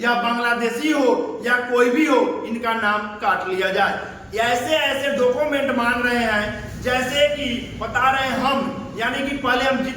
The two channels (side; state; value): both; identical; correlation 1.00